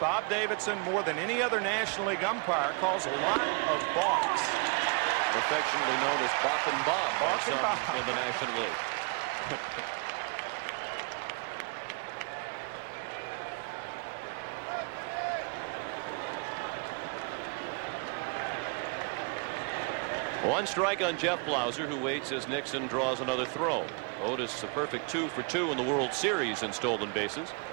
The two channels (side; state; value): left; quieter; 34.7 dB